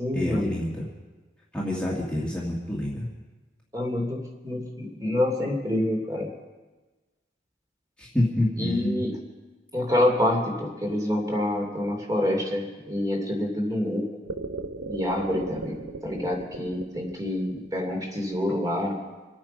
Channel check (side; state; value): both; normal; correlation 0.77